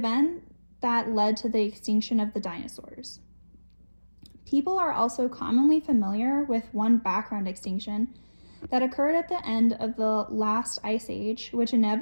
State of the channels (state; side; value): inverted; both; correlation -1.00